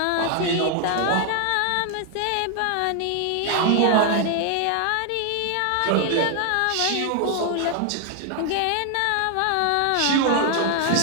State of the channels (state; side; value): different; both; correlation 0.00